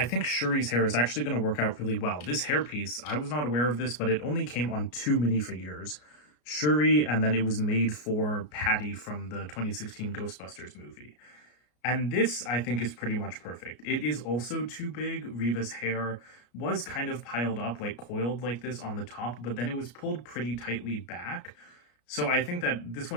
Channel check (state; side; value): late; right; 33 ms